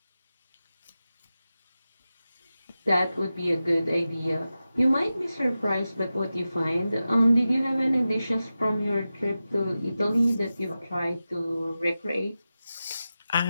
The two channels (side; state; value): both; inverted; correlation -0.93